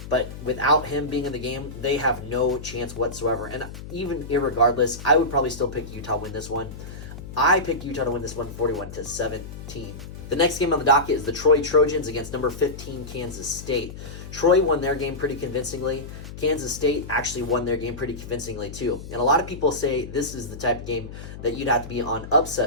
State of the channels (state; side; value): noise; left; hum, 12 dB below the sound